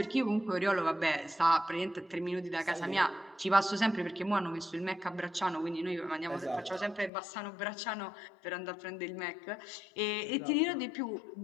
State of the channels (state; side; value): drops out; right; at 7.1 s